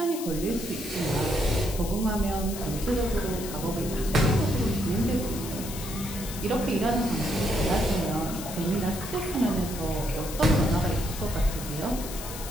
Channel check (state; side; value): noise; left; hiss, 10 dB below the sound